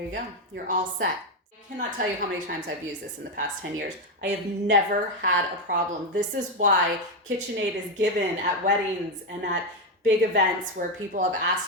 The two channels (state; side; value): normal; both; correlation 0.08